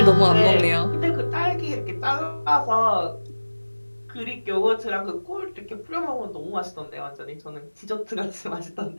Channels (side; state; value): both; inverted; correlation -1.00